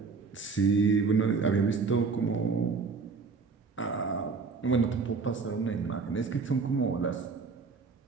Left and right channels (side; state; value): left; quieter; 4.7 dB